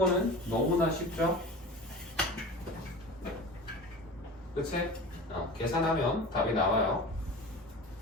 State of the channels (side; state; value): both; normal; correlation 0.34